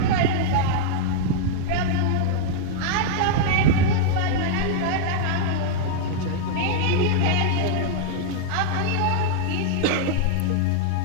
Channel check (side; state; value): both; different; correlation -0.01